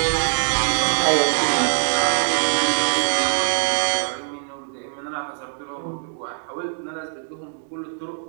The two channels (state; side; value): silent; left; digital silence